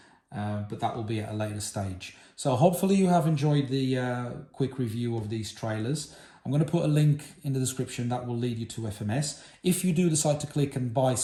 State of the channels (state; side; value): identical; both; correlation 1.00